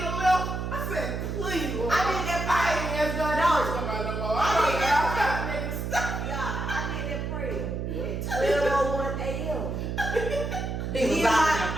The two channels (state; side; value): noise; right; hum, 3 dB below the sound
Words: a little. I said, please, Lord. I did that prayer. I ain't asked God to come out no more. I did that don't know. Yeah, I did that prayer at 12:01 a.m. He was Me